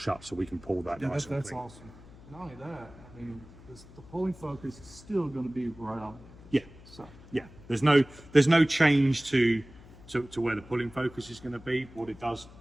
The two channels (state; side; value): noise; left; hum, 20 dB below the sound